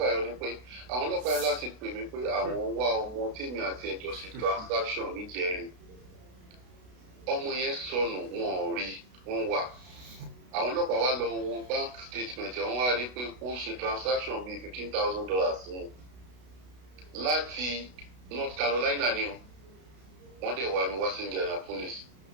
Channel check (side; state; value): left; late; 32 ms